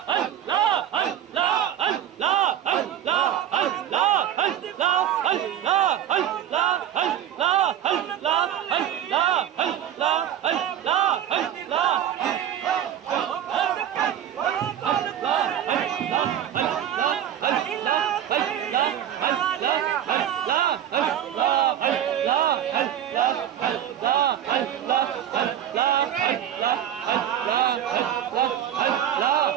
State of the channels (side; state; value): left; quieter; 10.6 dB